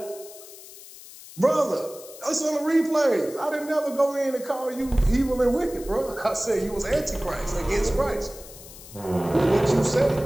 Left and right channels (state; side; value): noise; left; hiss, 17 dB below the sound